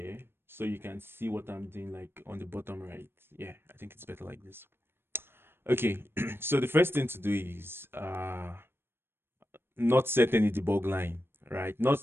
so you can see what I'm doing like on the bottom right. Yeah, I think it's better like this. Okay, so the first thing to do is not set any debug line, right? Not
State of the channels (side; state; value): left; late; 0.11 ms